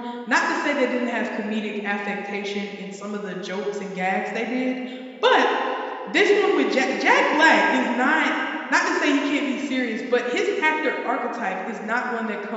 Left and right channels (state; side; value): identical; both; correlation 1.00